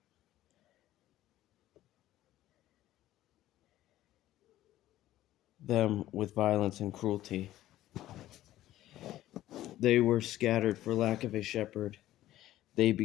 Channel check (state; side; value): quieter; right; 14.3 dB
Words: them with violence and cruelty. They were scattered for lack of a shepherd. They